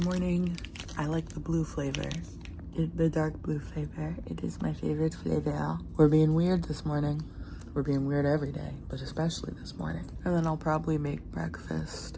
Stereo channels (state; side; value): identical; both; correlation 1.00